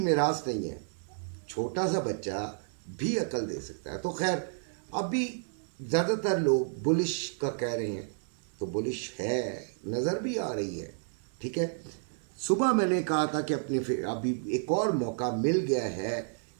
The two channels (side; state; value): left; silent; 57 dB below the other